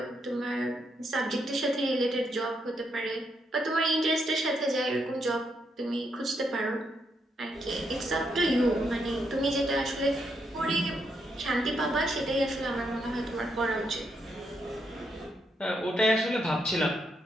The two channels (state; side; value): normal; both; correlation 0.79